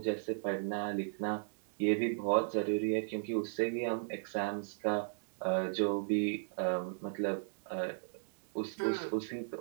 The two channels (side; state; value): left; silent; digital silence